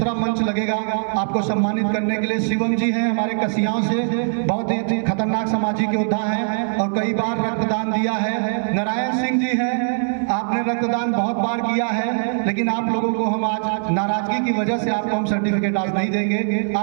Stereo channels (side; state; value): left; silent; digital silence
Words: मंच लगेगा आपको सम्मानित करने के लिए। शिवम जी हैं हमारे कसियाओं से, बहुत ही खतरनाक सामाजिक योद्धा हैं, और कई बार रक्तदान दिया है। नारायण सिंह जी हैं, आपने रक्तदान बहुत बार किया है, लेकिन आप लोगों को हम आज नाराजगी की वजह से आपको हम सर्टिफिकेट आज नहीं देंगे,